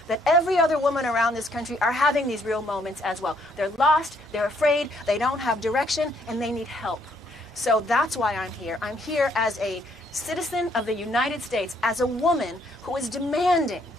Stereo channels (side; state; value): both; normal; correlation 0.68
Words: that every other woman around this country are having these real moments as well. They're lost, they're afraid, they don't have direction, and they need help. So that's why I'm here. I'm here as a citizen of the United States, as a woman who is demanding